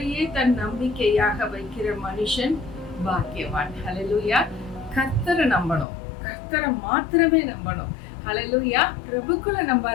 தன் நம்பிக்கையாக வைக்கிற மனுஷன் பாக்கியவான். ஹல்லேலூயா. கர்த்தரை நம்பணும், கர்த்தரை மாத்திரமே நம்பணும். ஹல்லேலூயா. பிரபுக்களை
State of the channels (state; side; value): drops out; right; at 5.9 s